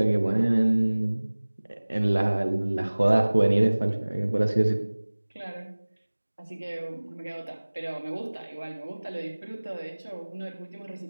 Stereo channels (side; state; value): both; inverted; correlation -1.00